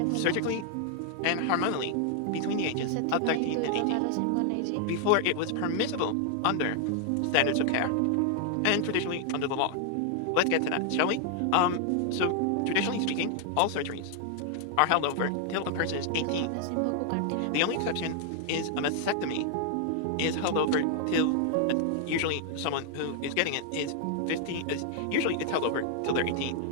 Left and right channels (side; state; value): both; different; correlation 0.00